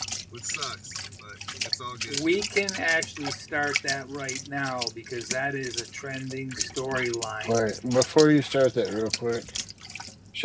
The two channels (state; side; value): identical; both; correlation 1.00